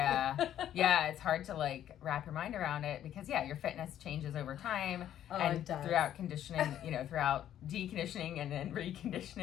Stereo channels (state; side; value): quieter; right; 11.1 dB